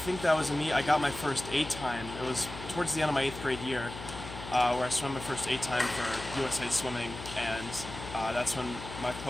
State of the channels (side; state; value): left; noise; hum, 11 dB below the sound